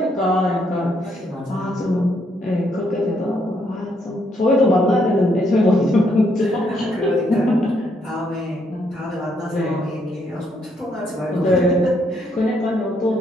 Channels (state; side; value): normal; both; correlation 0.73